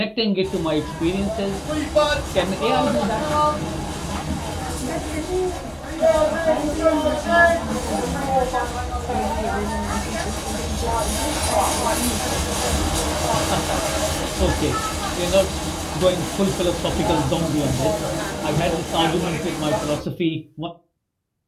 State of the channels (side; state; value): both; identical; correlation 1.00